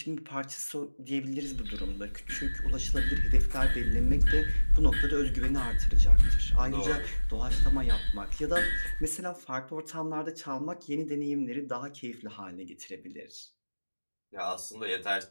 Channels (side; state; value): both; inverted; correlation -1.00